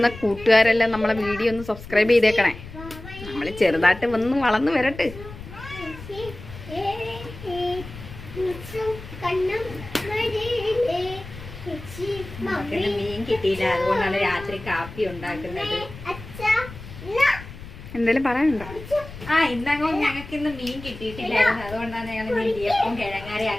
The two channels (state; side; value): noise; left; rumble, 14 dB below the sound